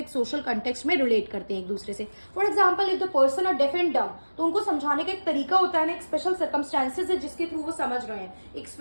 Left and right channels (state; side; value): inverted; both; correlation -1.00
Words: सोशल कंटेक्स्ट में रिलेट करते हैं एक दूसरे से। For example if the person are deaf and dumb, तो उनको समझाने का एक तरीका होता है ना, एक स्पेशल सर्कमस्टांसेस है जिसके थ्रू वो समझ रहे हैं, एक